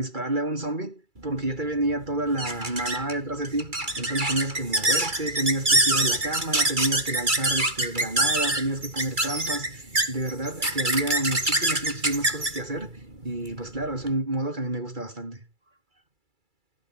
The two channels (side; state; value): left; late; 2.3 ms